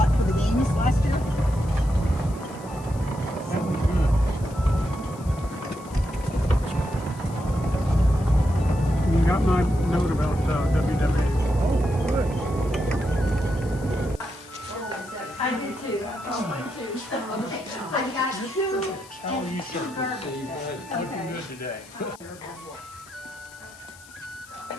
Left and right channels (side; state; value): left; noise; hiss, 21 dB below the sound